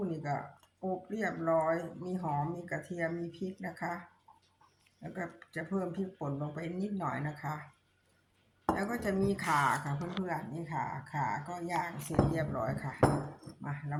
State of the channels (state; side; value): identical; both; correlation 1.00